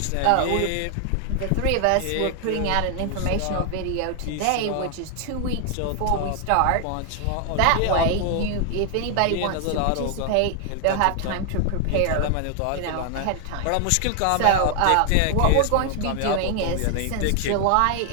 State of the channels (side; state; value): both; different; correlation 0.00